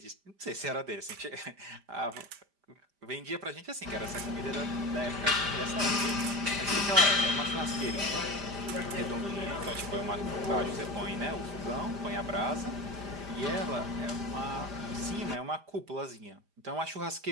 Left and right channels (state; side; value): late; left; 5.0 ms